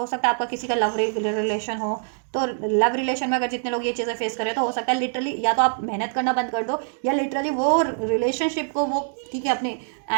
सकता है आपका किसी का लव रिलेशन हो, तो लव रिलेशन में अगर जितने लोग ये चीज़ें फेस करें तो हो सकता है लिटरली या तो आप मेहनत करना बंद कर दो या लिटरली वो रिलेशनशिप को वो ठीक है अपने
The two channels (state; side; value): silent; left; digital silence